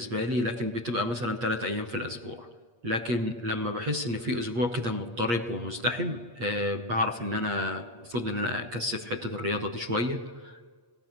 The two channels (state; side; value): late; left; 8.5 ms